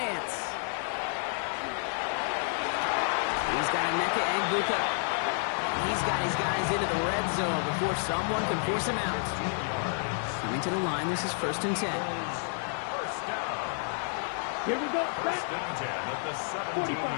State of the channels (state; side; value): silent; right; 58 dB below the other